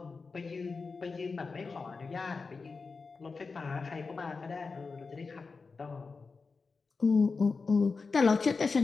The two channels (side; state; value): right; quieter; 4.4 dB